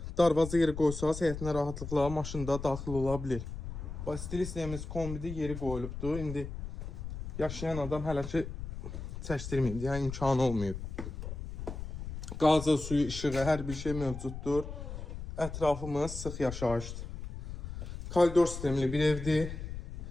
darvaza yeri qoysaz, həyətinə rahatlıqla maşında daxil ola bilir. Stil istəyimiz kombidi yeri qoyulubdur. İndi yaşayan adam hələ ki çəkdirməyib, yəni imkanı olmayıb. Qazı, suyu, işığı, hər bir şey mövcuddur. Ətrafımız sıx yaşayışdır. Koridor sistemli bir evdir.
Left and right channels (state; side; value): noise; left; rumble, 8 dB below the sound